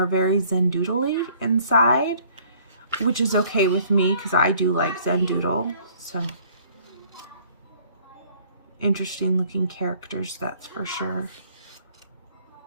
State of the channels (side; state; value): both; inverted; correlation -0.58